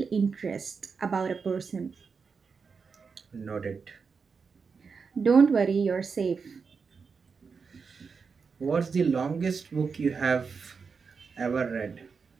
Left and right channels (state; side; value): quieter; left; 5.4 dB